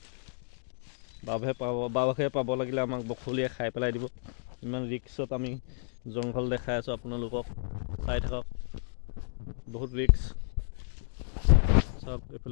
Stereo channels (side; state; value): right; silent; digital silence